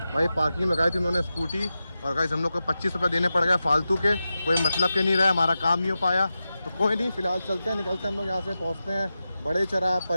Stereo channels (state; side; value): inverted; both; correlation -0.92